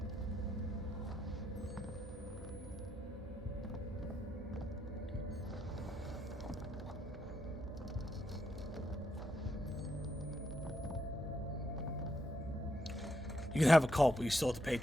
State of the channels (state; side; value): normal; both; correlation 0.79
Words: You can have a cult, but you still have to pay